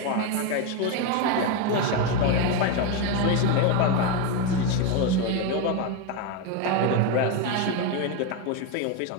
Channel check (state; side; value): different; both; correlation 0.03